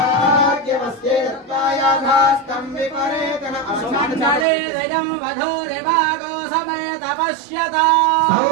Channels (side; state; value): left; drops out; at 4.5 s